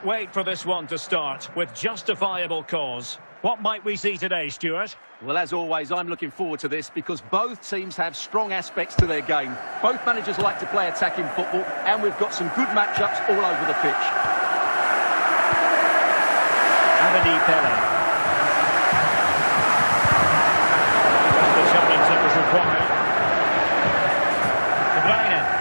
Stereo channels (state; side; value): inverted; both; correlation -1.00